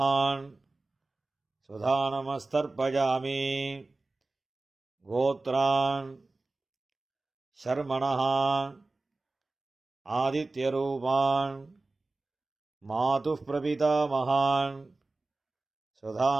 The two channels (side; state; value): left; quieter; 3.3 dB